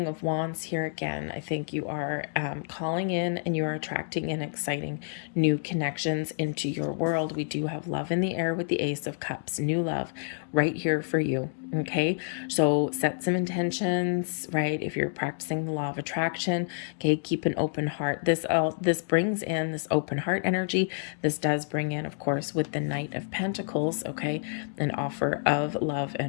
of Wands here again, I think you are calling in and you are attracting in exciting new connections into your world. We do have love in the air with the Ace of Cups, new love right here for you. Okay, so set some intentions, right? If you're practicing the law of attraction, okay, keep an open heart. This brings in this open heart energy. This does bring in, of course, with the Knight of Pentacles, okay, an offer of love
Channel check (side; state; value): right; silent; digital silence